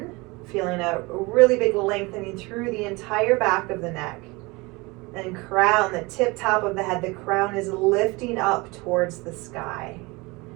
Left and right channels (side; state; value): left; quieter; 24.6 dB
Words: feeling a really big lengthening through the entire back of the neck. And crown, the tip top of the head, the crown is lifting up towards the sky.